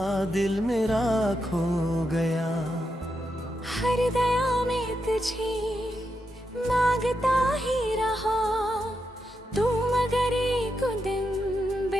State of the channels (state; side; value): normal; both; correlation 0.85